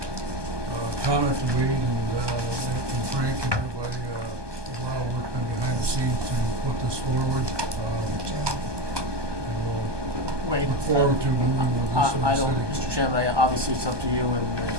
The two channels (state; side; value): late; left; 1.2 ms